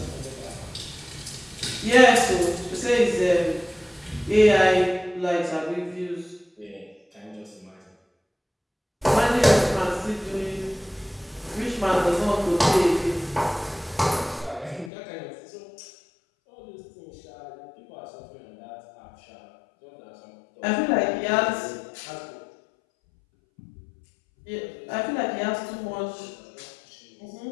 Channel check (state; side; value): drops out; right; at 14.9 s